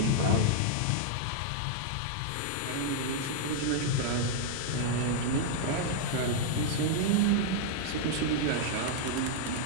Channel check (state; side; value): different; both; correlation -0.01